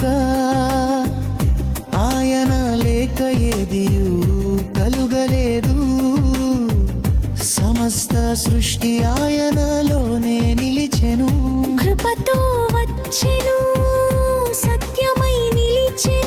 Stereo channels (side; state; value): both; identical; correlation 1.00